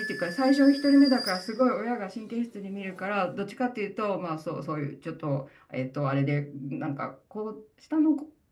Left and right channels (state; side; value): identical; both; correlation 1.00